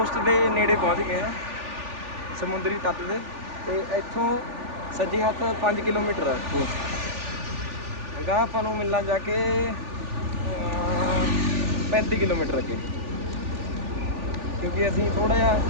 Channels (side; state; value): left; late; 3.4 ms